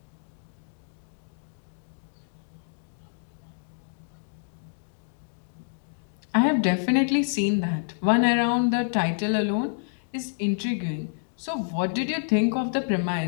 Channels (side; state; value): right; silent; digital silence